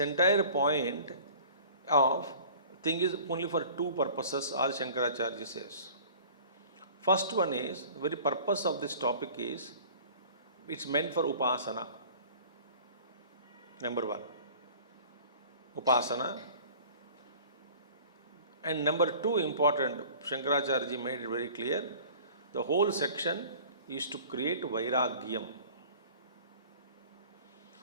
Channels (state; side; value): inverted; both; correlation -0.46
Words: point of thing is only for two purposes, Adi Shankaracharya says. First one is, the very purpose of this topic is, it's meant for Upasana. Number one, Upasana. And number two important, Shankaracharya made it very clear, the whole section is to create Vairagyam.